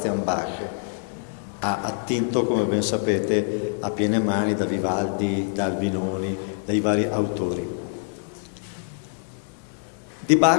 Bach. Ha attinto, come ben sapete, a piene mani da Vivaldi, da Albinoni, dai vari autori. Di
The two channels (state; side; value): silent; right; 57 dB below the other